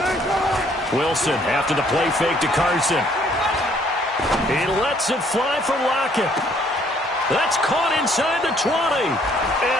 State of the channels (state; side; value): normal; both; correlation 0.63